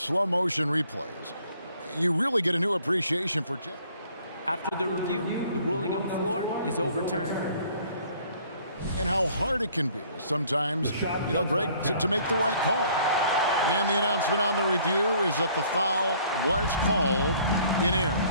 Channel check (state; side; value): inverted; both; correlation -0.58